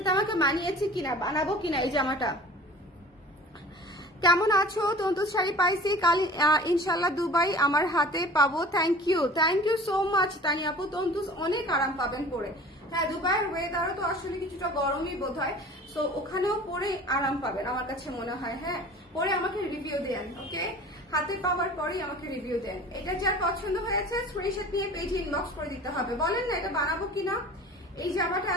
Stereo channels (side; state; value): both; normal; correlation 0.42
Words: তো আমাকে মানিয়েছে কিনা, বানাবো কিনা এই জামাটা। কেমন আছো? তন্তুজ শাড়ি পাইছি কাল ইনশাল্লাহ দুবাই আমার হাতে পাবো। থ্যাংক ইউ সো মাচ তানি আপু। তন্তুজ অনেক আরাম পাবেন পরে। হ্যাঁ, দুবাইয়ের ওয়েদারও তো আসলে কিছুটা গরমই বোধ হয়, সো ওখানেও পরে আরাম পাবেন আমার কাছে মনে হয়। হ্যাঁ, পরে আমাকে রিভিউ দেন, ওকে? হাতে পাওয়ার পরেই আমাকে রিভিউ দেন। এটা যার পছন্দ হয়েছে স্ক্রিনশট নিয়ে পেজে ইনবক্স করে দিতে হবে। বলেন না এটা বানাবো কিনা। এই জামাটা